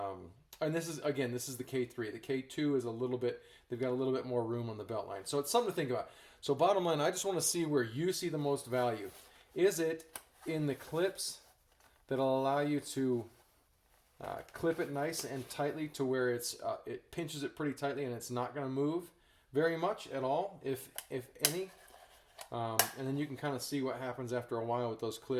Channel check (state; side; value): identical; both; correlation 1.00